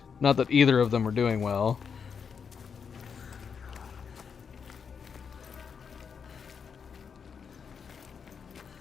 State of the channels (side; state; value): right; quieter; 6.4 dB